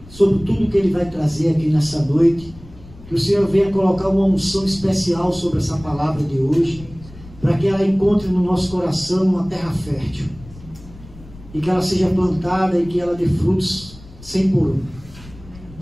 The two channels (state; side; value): noise; left; rumble, 19 dB below the sound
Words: sobre tudo que ele vai trazer aqui nessa noite. Que o Senhor venha colocar uma unção especial sobre essa palavra de hoje, para que ela encontre no nosso coração uma terra fértil, e que ela seja plantada e que ela dê frutos 100 por 1.